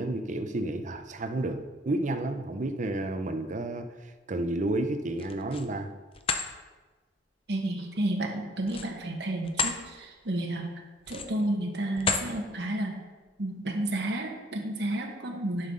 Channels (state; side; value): normal; both; correlation 0.61